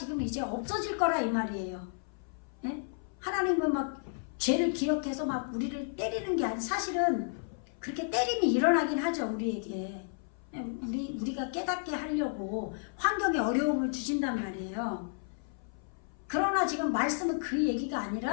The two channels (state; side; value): silent; right; 56 dB below the other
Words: 이제 없어질 거라 이 말이에요. 네? 하나님은 막 죄를 기억해서 막 우리를 때리는 게 아니라, 사실은 그렇게 때림이 일어나긴 하죠. 우리에게. 우리가 깨닫게 하려고 환경에 어려움을 주신단 말이에요. 그러나 지금 말씀은 그 얘기가